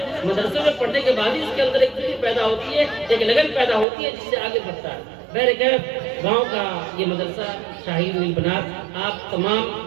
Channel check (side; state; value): left; drops out; at 3.9 s